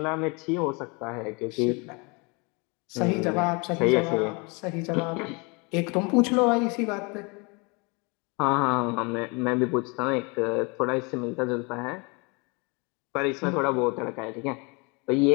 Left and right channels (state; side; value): quieter; right; 30.0 dB